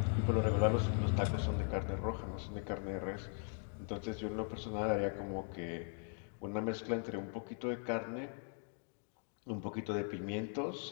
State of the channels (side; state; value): right; silent; 51 dB below the other